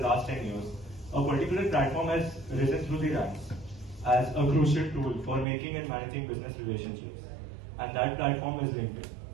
10 years, a particular platform has risen through the ranks as a crucial tool for making and managing business relationships, and that platform is LinkedIn.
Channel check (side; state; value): left; drops out; at 5.5 s